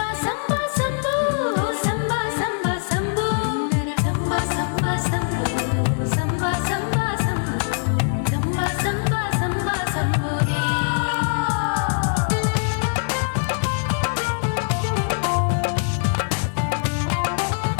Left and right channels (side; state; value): right; silent; 64 dB below the other